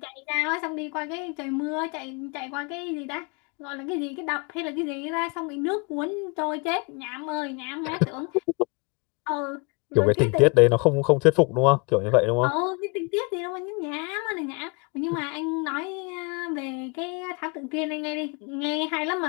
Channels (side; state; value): right; quieter; 31.2 dB